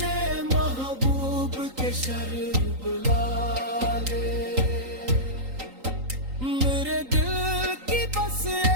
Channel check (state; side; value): late; left; 3.8 ms